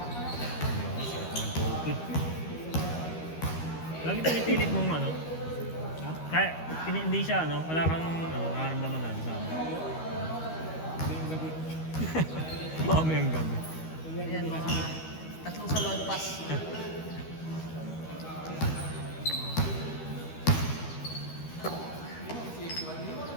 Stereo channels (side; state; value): right; late; 13 ms